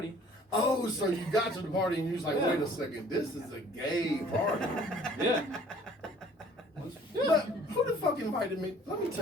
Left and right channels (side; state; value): both; normal; correlation 0.54